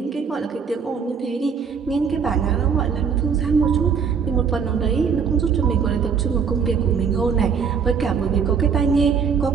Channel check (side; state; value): left; quieter; 6.4 dB